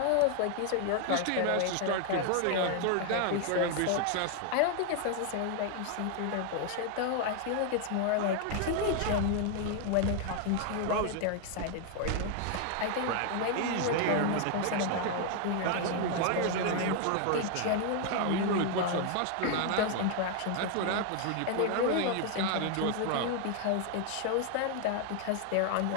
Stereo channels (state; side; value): different; both; correlation 0.00